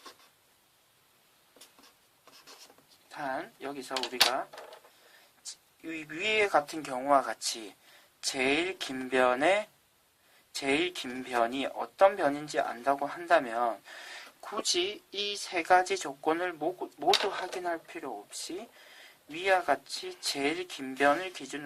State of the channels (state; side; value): identical; both; correlation 1.00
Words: 단 여기서 우리가 위에 같은 경우와 같이 제일 긴 변이 어떤 변인지 안다고 한다면 굳이 이 3가지 조건을 모두 확인할 필요 없이 위와 같이 제일 긴 변을